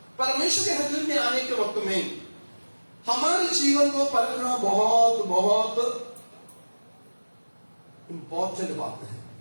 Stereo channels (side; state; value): both; inverted; correlation -1.00